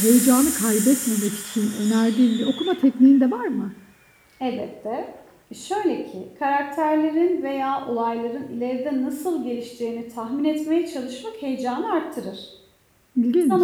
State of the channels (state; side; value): identical; both; correlation 1.00